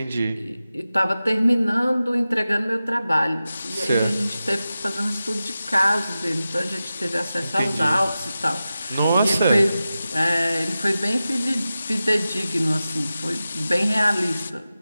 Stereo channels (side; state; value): both; inverted; correlation -0.94